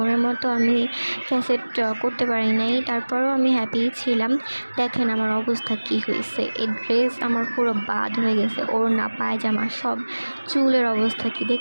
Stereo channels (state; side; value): inverted; both; correlation -1.00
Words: মতো আমি ক্যাসেট করতে পারি নাই, তারপরেও আমি হ্যাপি ছিলাম। দেখেন আমার অবস্থা কি হয়েছে, এই ড্রেস আমার পুরো বাদ হয়ে গেছে, ওড়না পায়জামা সব, চুলের অবস্থা কি